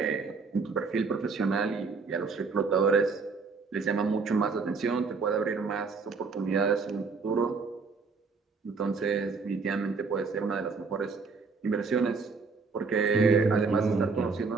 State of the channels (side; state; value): left; quieter; 4.6 dB